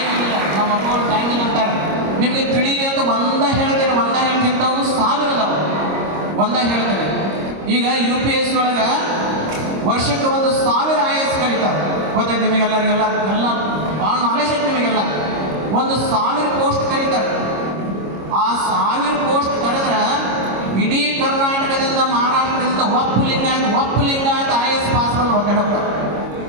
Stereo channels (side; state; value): left; late; 26 ms